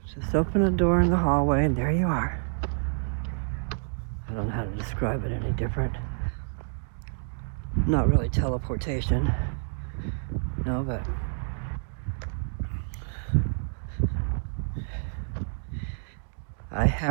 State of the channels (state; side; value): silent; left; digital silence